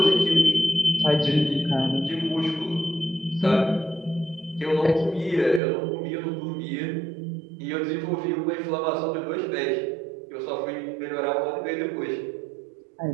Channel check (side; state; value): left; drops out; at 5.6 s